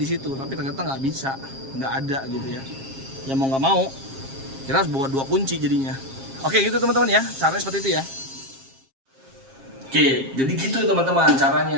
situ, tapi ternyata nggak bisa, nggak ada gitu ya. Ya mau nggak mau kita harus bawa dua kunci jadinya. Oke gitu teman-teman ya, caranya seperti itu ya. Oke jadi gitu teman-teman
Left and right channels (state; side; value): late; left; 7.5 ms